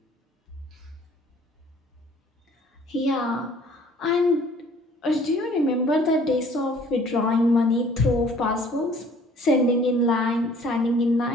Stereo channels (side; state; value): both; normal; correlation 0.55